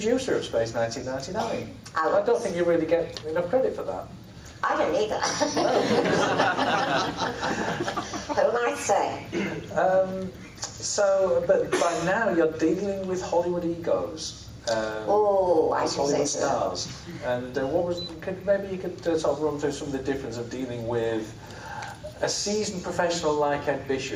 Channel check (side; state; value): both; identical; correlation 1.00